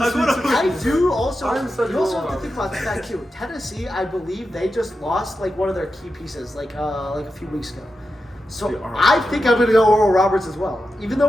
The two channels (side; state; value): both; normal; correlation 0.89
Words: I'm Sweet gonna- 16. I do also. I'm such You also a have to Roberts. think about the fact too. Tennessee, I believe they just lost one of their key pieces like a few weeks ago. So They are. I think I'm gonna go Oral Roberts as well. Even